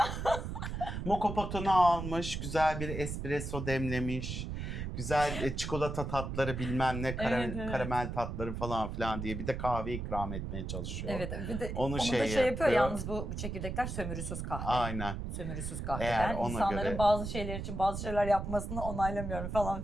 Mokopotunu almış, güzel bir espresso demlemiş. Güzel çikolata tatları bilmem ne Evet. karamel tatları falan filan diye bir de kahve ikram etmeye çalışıyor. Evet, bir de Onu onu şey da şey yapıyor yapıyor. yalnız, bu çekirdekler sömürüsüz kahve. Aynen. Sömürüsüz kahve. Eğer Ben ona insanların göre- bazı şeyler için bazı şeyler yapmasını onaylamıyorum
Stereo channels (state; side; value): noise; right; rumble, 5 dB below the sound